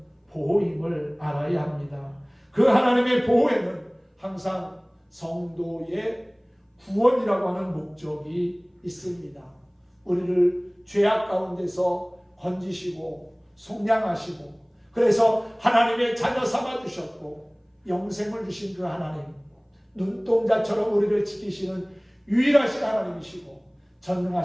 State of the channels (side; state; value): both; identical; correlation 1.00